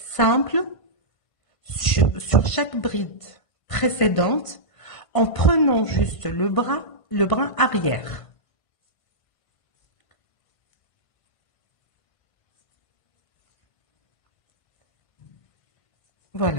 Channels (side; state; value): right; late; 1.5 ms